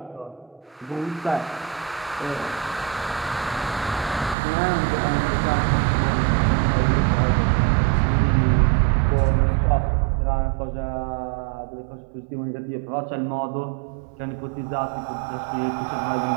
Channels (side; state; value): left; drops out; at 4.4 s